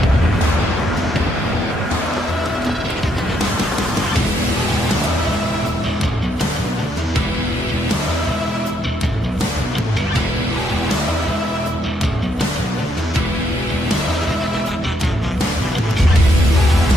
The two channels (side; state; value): both; normal; correlation 0.74